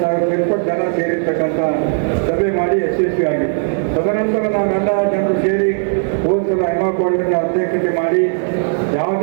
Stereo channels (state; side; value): silent; left; digital silence